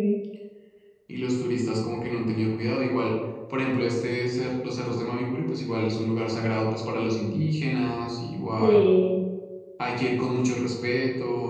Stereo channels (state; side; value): identical; both; correlation 1.00